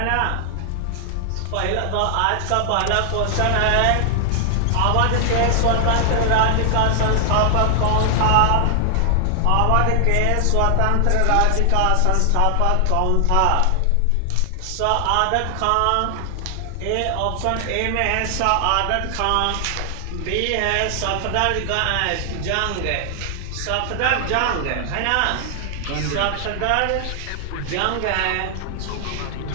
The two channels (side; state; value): both; different; correlation 0.00